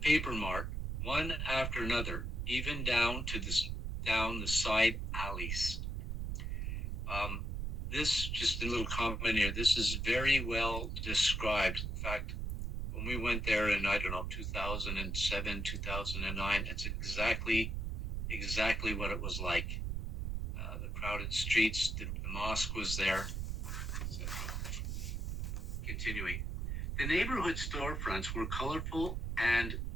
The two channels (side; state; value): right; noise; rumble, 2 dB below the sound